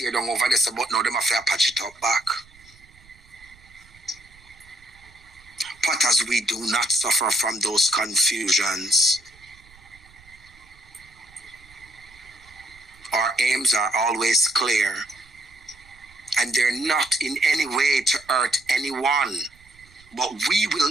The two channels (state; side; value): noise; right; rumble, 27 dB below the sound